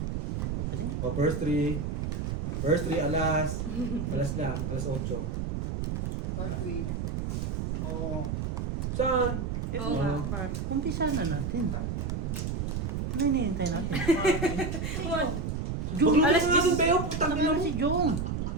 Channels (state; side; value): noise; right; rumble, 2 dB below the sound